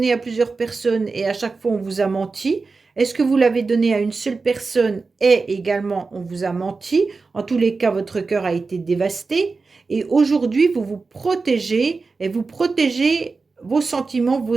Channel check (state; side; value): quieter; left; 4.2 dB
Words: à plusieurs personnes et à chaque fois on vous a menti? Est-ce que vous l'avez donné à une seule personne et également on vous a menti? En tous les cas, votre cœur a été dévasté. Et aujourd'hui, vous vous protégez et vous protégez vos sentiments, vos